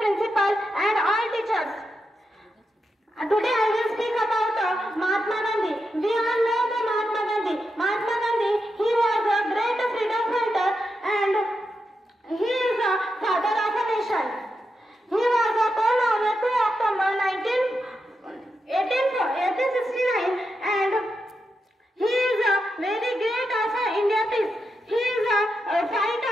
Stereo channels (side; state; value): both; normal; correlation 0.86